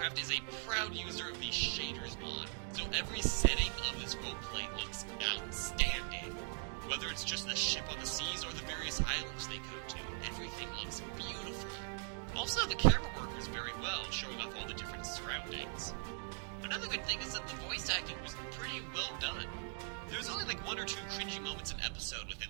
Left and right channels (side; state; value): left; silent; 51 dB below the other